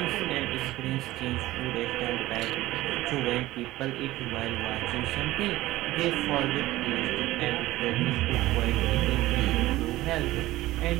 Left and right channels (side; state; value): left; quieter; 16.9 dB